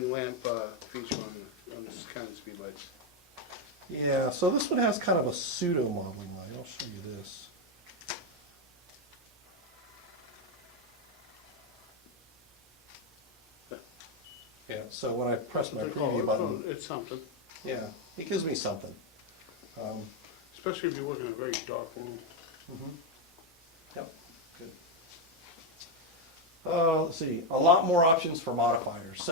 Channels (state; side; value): normal; both; correlation 0.05